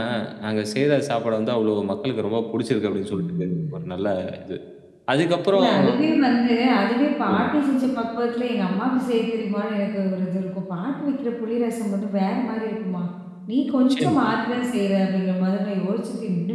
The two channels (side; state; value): both; identical; correlation 1.00